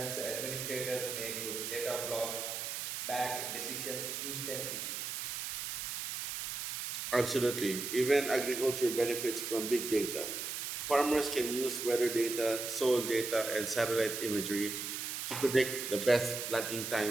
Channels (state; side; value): noise; right; hiss, 4 dB below the sound